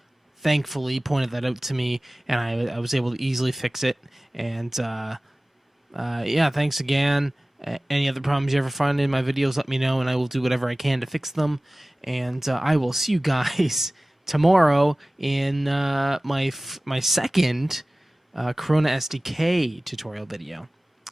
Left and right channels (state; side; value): normal; both; correlation 0.98